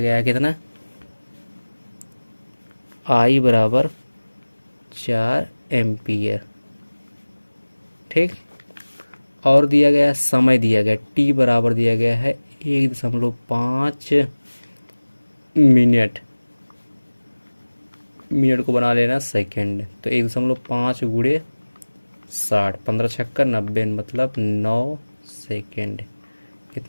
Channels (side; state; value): both; inverted; correlation -1.00